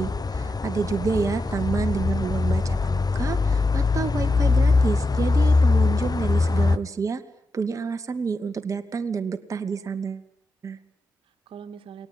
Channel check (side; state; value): both; normal; correlation 0.88